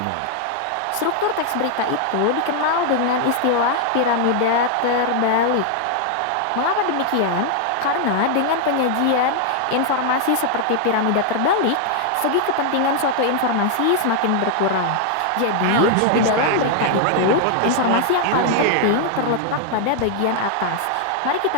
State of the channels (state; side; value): different; both; correlation 0.00